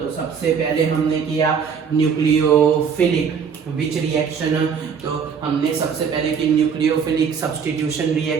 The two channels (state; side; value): quieter; left; 6.6 dB